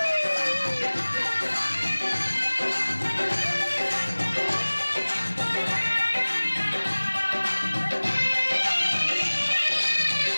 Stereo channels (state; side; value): inverted; both; correlation -1.00